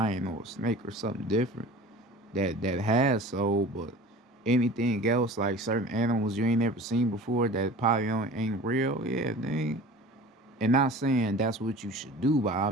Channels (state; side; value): normal; both; correlation 0.40